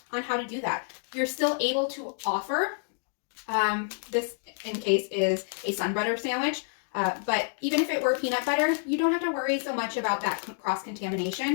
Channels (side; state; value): right; silent; digital silence